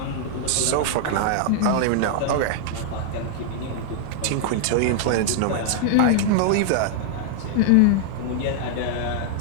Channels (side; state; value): both; different; correlation -0.01